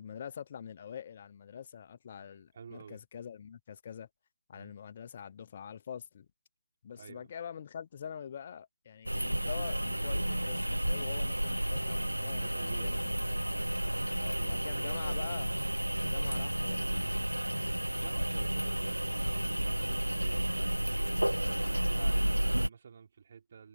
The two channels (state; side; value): inverted; both; correlation -0.98